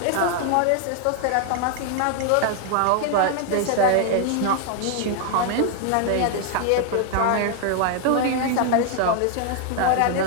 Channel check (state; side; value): different; both; correlation 0.00